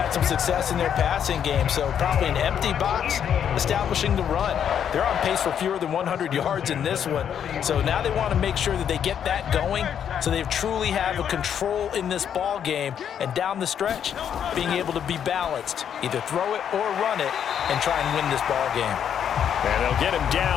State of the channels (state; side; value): quieter; right; 8.7 dB